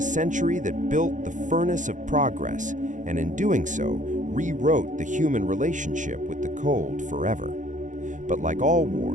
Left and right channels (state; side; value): late; left; 0.36 ms